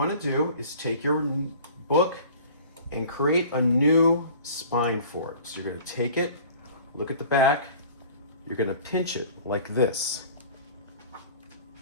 to do is take your book and create a new spine for it. So you're going to take it, look at the back, you're gonna pinch it like this.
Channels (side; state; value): both; inverted; correlation -0.45